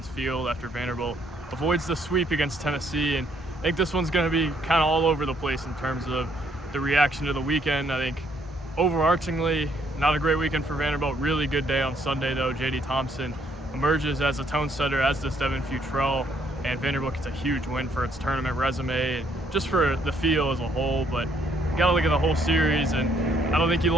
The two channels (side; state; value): both; normal; correlation 0.68